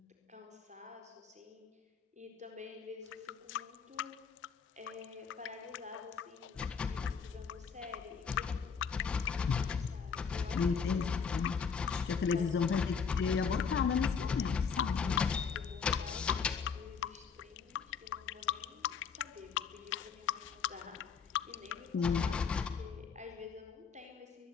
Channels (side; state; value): right; quieter; 6.0 dB